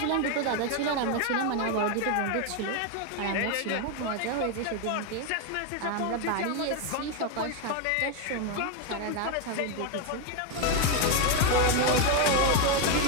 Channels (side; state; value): both; different; correlation 0.01